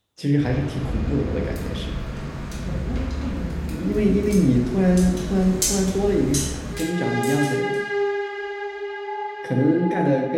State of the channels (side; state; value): both; identical; correlation 1.00